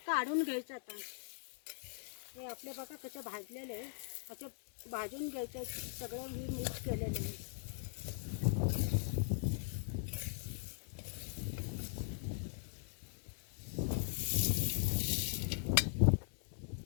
काढून घ्यायचं. आता हे आपले बघा कसं भाजलेलं आहे. असं भाजून घ्यायचं. सगळं मी मिक्स केलेलं आहे.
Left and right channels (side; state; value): right; silent; digital silence